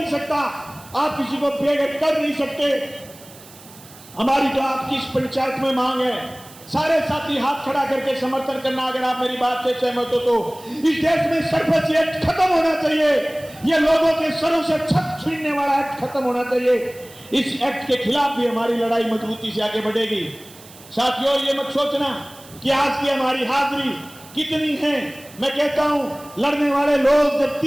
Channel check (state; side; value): noise; right; hiss, 21 dB below the sound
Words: सकता, आप किसी को बेघर कर नहीं सकते। हमारी तो आपकी इस पंचायत में मांग है, सारे साथी हाथ खड़ा करके समर्थन करना। अगर आप मेरी बात से सहमत हो तो इस देश में सरपंच एक्ट खत्म होना चाहिए। ये लोगों के सरों से छत छीनने वाला एक्ट खत्म होना चाहिए। इस एक्ट के खिलाफ भी हमारी लड़ाई मजबूती से आगे बढ़ेगी। साथियों, ये मत सोचना कि आज की हमारी हाजिरी कितनी है। मैं कहता हूं, लड़ने वाले लोग जब